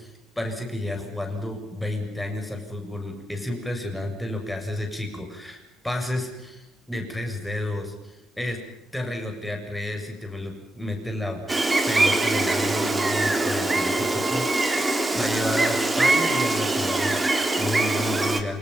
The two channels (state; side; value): normal; both; correlation 0.87